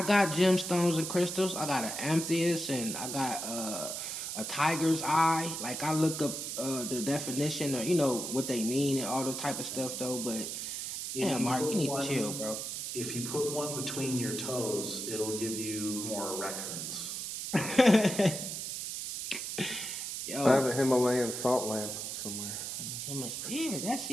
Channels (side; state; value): right; noise; hiss, 5 dB below the sound